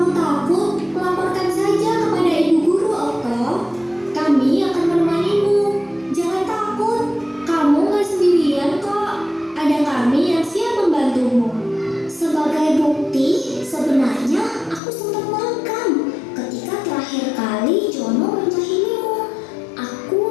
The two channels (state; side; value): drops out; right; at 14.8 s